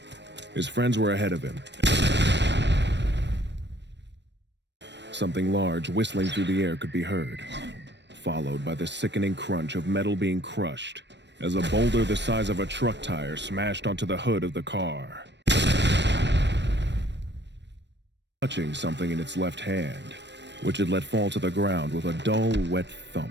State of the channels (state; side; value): late; left; 0.51 ms